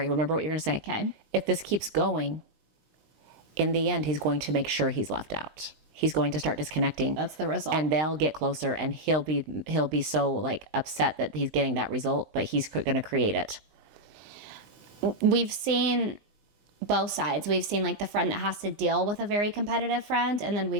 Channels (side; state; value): left; late; 19 ms